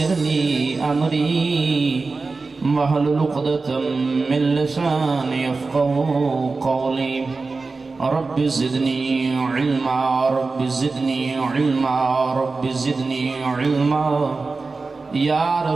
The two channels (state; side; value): quieter; left; 3.9 dB